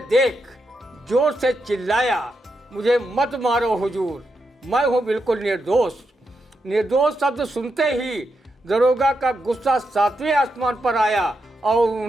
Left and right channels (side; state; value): both; normal; correlation 0.84